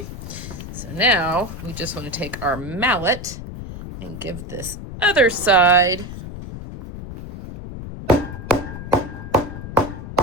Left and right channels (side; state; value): left; noise; rumble, 10 dB below the sound